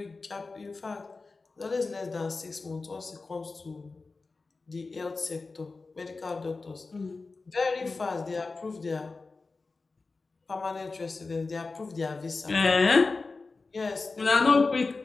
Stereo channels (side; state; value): right; quieter; 3.9 dB